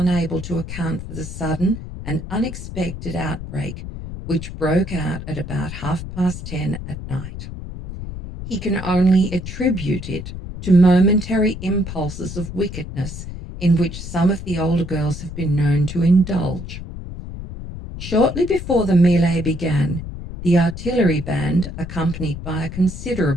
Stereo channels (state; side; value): noise; left; rumble, 9 dB below the sound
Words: to account for the sudden and unexpected outbreak which broke out at about 10:30 at night. He can only attribute it to momentary impulses of wickedness in which some of the older girls have been known to indulge. Shortly before the melee began, the artillery band, accompanied by a